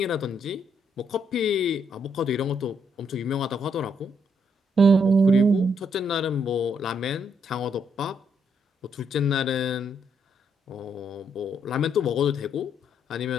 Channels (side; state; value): both; normal; correlation 0.74